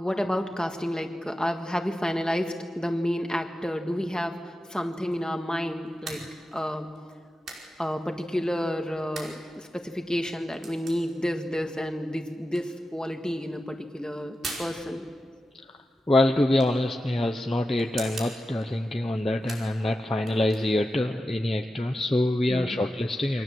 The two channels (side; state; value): both; normal; correlation 0.91